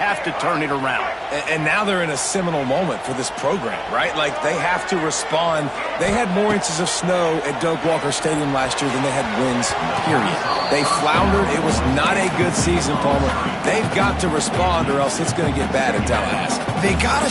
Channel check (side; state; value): both; identical; correlation 1.00